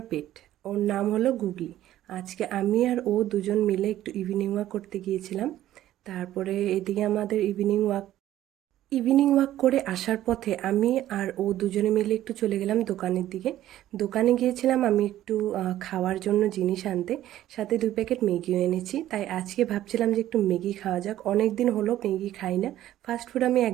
পেট। ওর নাম হলো গুগলি। আজকে আমি আর ও দুজন মিলে একটু ইভিনিং ওয়াক করতে গিয়েছিলাম। তারপরে এদিকে আমাদের ইভিনিং ওয়াক করে আসার পথে আমি আর ও দুজনে মিলে একটু চলে গেলাম দোকানের দিকে। দোকানে গিয়েছিলাম আমি একটু খাওয়ার জন্য জিনিস আনতে, সাথে 2 প্যাকেট ম্যাগিও এনেছি। তাই আজকে ভাবছিলাম যে একটু ম্যাগি খাওয়া যাক, অনেক দিন হলো ম্যাগি খাই না। ফাস্ট ফুড আমি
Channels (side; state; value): left; quieter; 13.3 dB